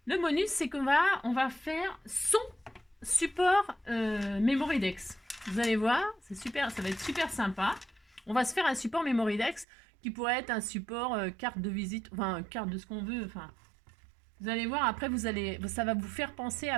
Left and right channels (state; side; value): drops out; left; at 9.7 s